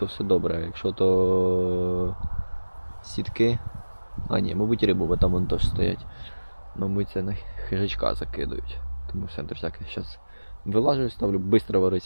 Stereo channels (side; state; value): both; inverted; correlation -1.00